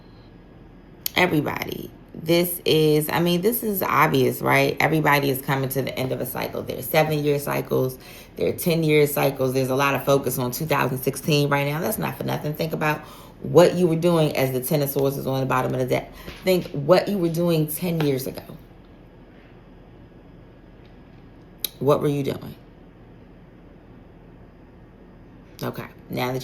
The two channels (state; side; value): identical; both; correlation 1.00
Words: Everybody. This is obvious, right? Everybody is coming to the end of a cycle. There's 7-year cycles. There are 10-year cycles. There's a lot of focus on 2016 right now. That's not for nothing. Think about what you were doing as the Ten of Swords is on the bottom of the deck. Think what you were doing 10 years ago. What were you doing? Okay. Now